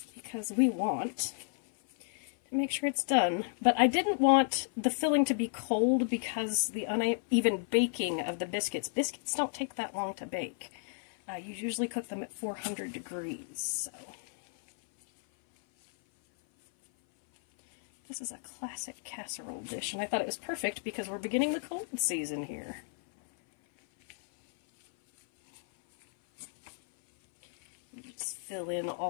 Because we want to make sure it's done. But I didn't want the filling to be cold because the uneven baking of the biscuits. Biscuits don't take that long to bake. You usually cook them at 400 degrees, so... This is a classic casserole dish, and I thought it was perfect because we're beginning the cold season here. Just fill in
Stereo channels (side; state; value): right; silent; 56 dB below the other